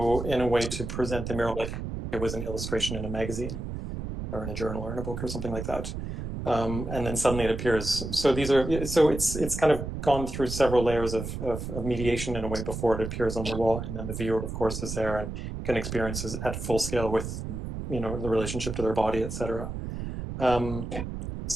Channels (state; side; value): noise; right; rumble, 6 dB below the sound